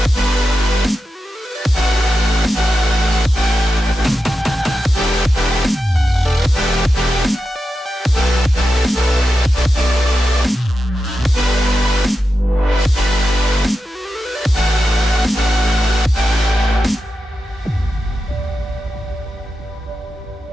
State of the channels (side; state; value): both; normal; correlation 0.89